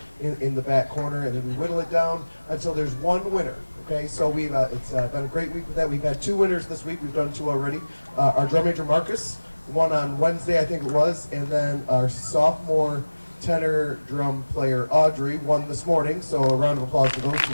in the back corner, and then we whittle it down until there's one winner. Okay, so it's been a great week with that. We've had 2 winners this week. We've done 2 already. Our drum major Marcus won on Wednesday, I think it was, and then our sophomore tenor drum player Audrey won this morning. So a round of applause for those two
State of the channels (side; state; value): both; inverted; correlation -1.00